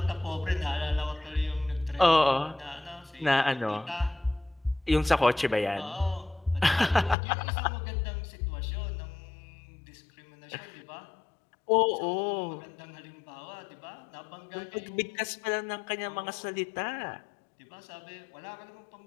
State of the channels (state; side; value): drops out; right; at 7.2 s